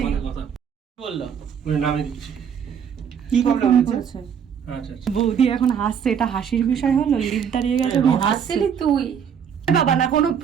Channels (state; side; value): quieter; left; 7.7 dB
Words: আমাদের কথা বললো মানে নামিয়ে দিচ্ছি। কি প্রবলেম হচ্ছে? আচ্ছা আচ্ছা। বৌদি এখন হাসছে, এটা হাসির বিষয় হলো? লিফট দাঁড়িয়ে গেছে হ্যাঁ, হাসছে। আসছিলি তুই? বাবা না, কোনো